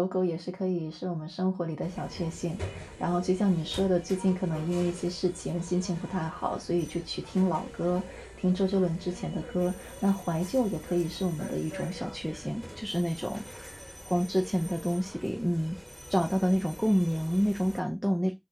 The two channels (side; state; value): both; identical; correlation 1.00